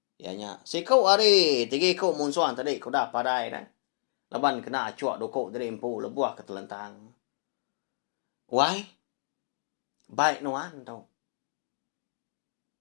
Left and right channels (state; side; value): silent; right; digital silence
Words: Ya nya sikau ari tigi ko munsuan tadi ko dah padai dah. Laban kena cuak dokok dari empu lebuah ke telentang. Why? Baik nuan tau.